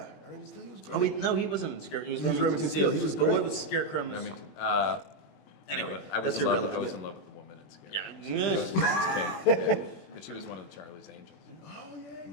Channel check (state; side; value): late; right; 21 ms